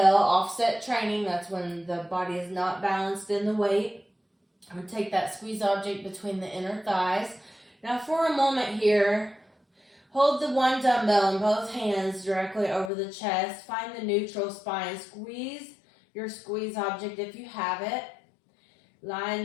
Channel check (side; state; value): right; drops out; at 12.9 s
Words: offset training. That's when the body is not balanced in the weight. I'm gonna take that squeeze object between the inner thighs. Now for a moment here, hold the one dumbbell in both hands directly over the chest. Find the neutral spine. Squeeze your squeeze object if you have it. Line